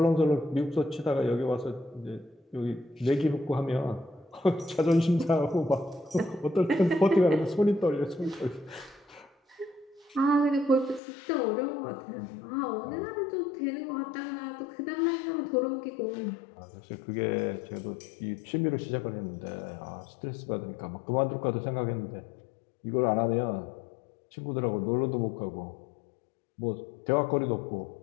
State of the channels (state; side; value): drops out; right; at 11.0 s